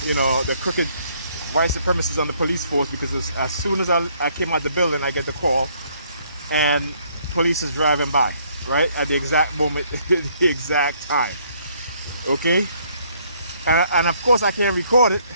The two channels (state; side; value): inverted; both; correlation -0.66